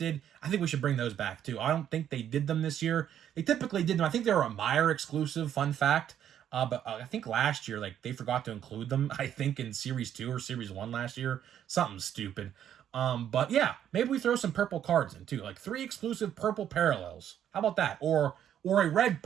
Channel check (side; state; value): left; quieter; 10.1 dB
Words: I think we should bring those back too. I don't think they did them this year. They typically did them. I think they were a Meyer exclusive, fun fact. But I think last year, they forgot to include them, I think, in Series 2 or Series 1 last year. Something stupid. But yeah, maybe we throw some purple cards in too. Like 3 exclusive purple parallels. How about that? Or a red